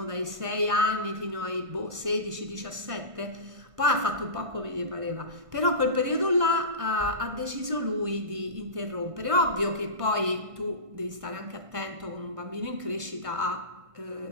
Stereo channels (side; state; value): left; late; 1.5 ms